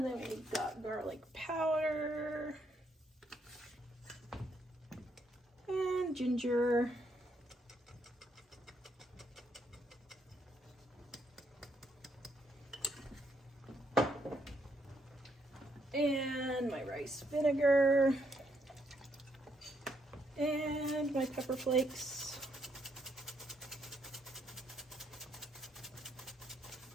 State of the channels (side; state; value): both; normal; correlation 0.74